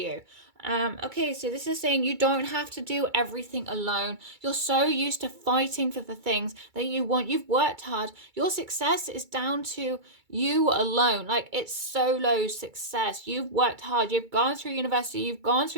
Okay, so this is saying you don't have to do everything alone. You're so used to fighting for the things that you want. You've worked hard. Your success is down to you alone. Like, it's solo success. You've worked hard. You've gone through university. You've gone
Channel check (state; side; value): late; left; 2.3 ms